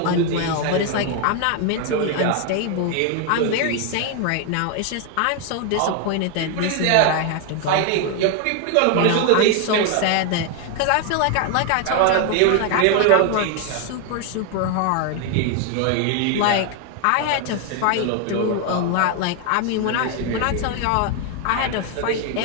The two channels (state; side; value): different; both; correlation 0.01